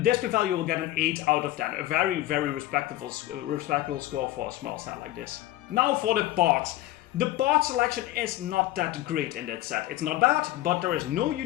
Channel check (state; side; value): quieter; right; 15.6 dB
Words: Display value will get an 8 out of 10. A very respectable score for a small set like this. Now for the parts. The part selection is not that great in that set. It's not bad, but there is no